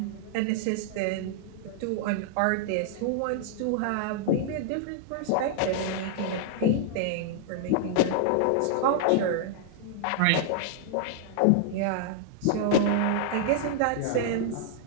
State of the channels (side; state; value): both; different; correlation -0.01